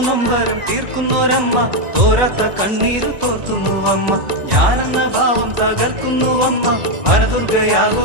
നൊമ്പരം തീർക്കുന്നൊരമ്മ തോരാത്ത കണ്ണീര് തോർത്തുന്നുവമ്മ. ഞാനെന്ന ഭാവം തകർക്കുന്നുവമ്മ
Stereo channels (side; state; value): left; late; 1.9 ms